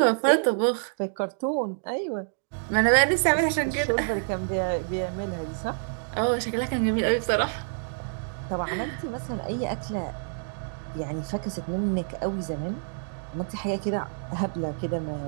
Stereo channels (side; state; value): left; silent; digital silence